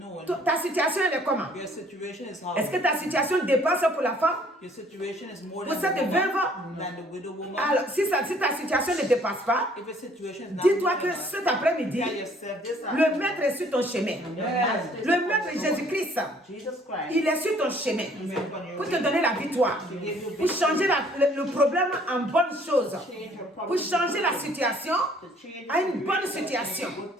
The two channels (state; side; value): normal; both; correlation 0.59